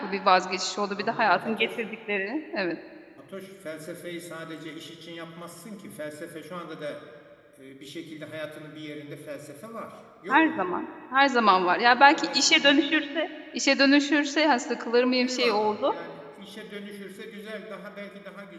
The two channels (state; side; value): identical; both; correlation 1.00